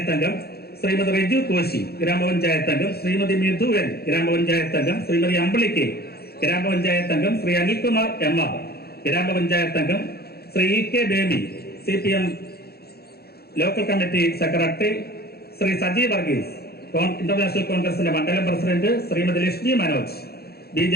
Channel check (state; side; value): late; right; 0.46 ms